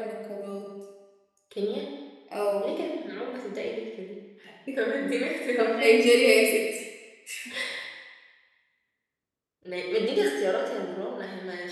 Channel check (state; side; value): identical; both; correlation 1.00